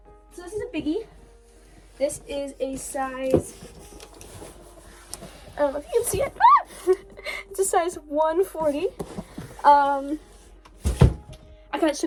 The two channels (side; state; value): both; identical; correlation 1.00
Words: So this is a biggie. This is a size, I don't know if you can see it. It's a size 140. I got it